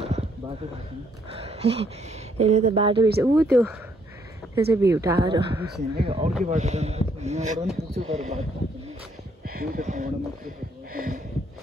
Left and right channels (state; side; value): normal; both; correlation 0.69